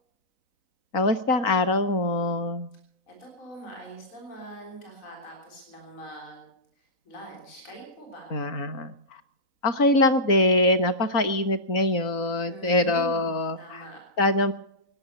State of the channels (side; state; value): right; late; 3.9 ms